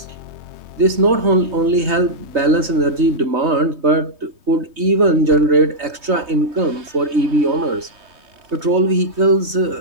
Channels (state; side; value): late; left; 3.2 ms